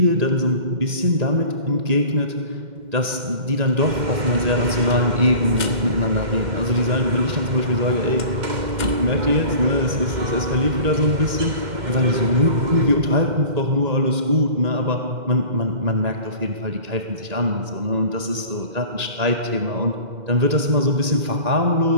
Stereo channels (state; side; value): late; left; 2.1 ms